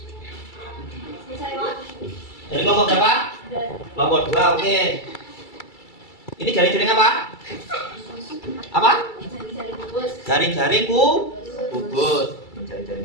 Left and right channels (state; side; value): late; right; 2.3 ms